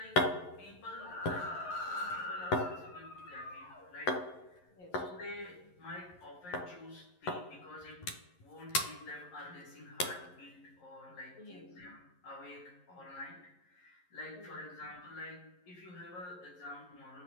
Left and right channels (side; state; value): right; late; 11 ms